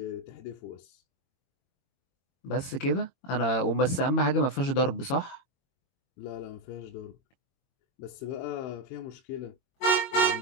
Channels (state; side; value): late; right; 22 ms